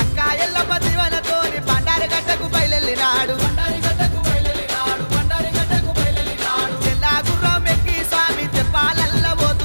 బయలెల్లినాడు తెల్లా గుర్రం ఎక్కి స్వామి తెప్పాలల్ల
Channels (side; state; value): both; inverted; correlation -1.00